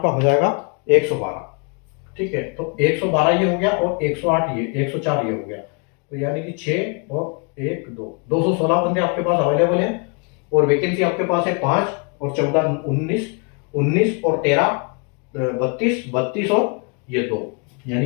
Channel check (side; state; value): right; quieter; 35.0 dB